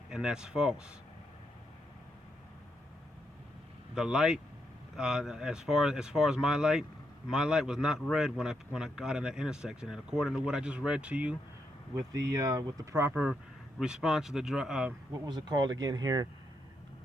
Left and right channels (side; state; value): both; normal; correlation 0.80